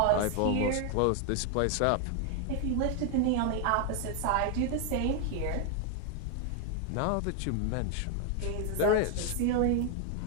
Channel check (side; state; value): both; different; correlation 0.01